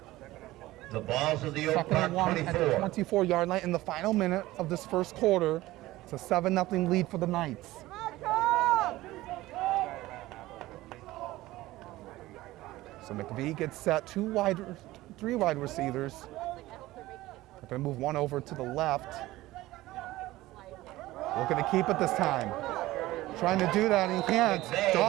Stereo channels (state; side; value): quieter; left; 17.4 dB